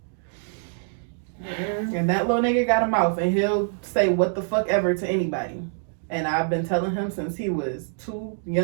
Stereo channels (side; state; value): left; silent; 62 dB below the other